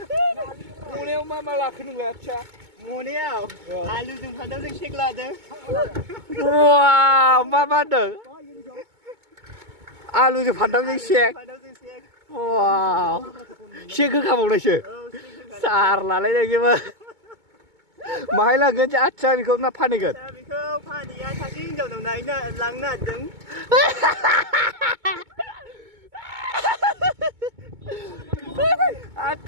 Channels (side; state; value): left; late; 2.2 ms